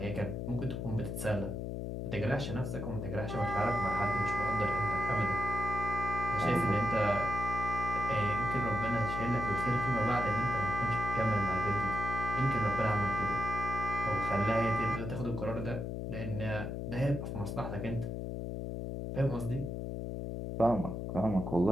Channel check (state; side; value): noise; left; hum, 4 dB below the sound